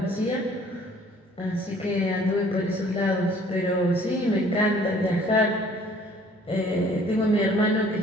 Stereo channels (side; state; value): both; normal; correlation 0.56